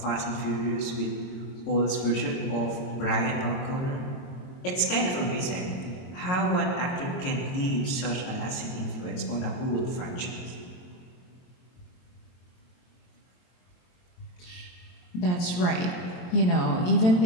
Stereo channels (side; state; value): right; late; 23 ms